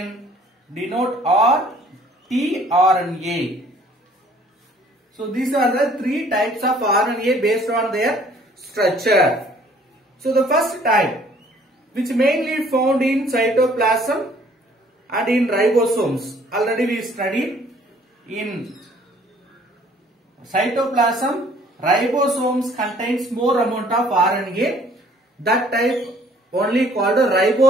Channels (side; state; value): both; normal; correlation 0.58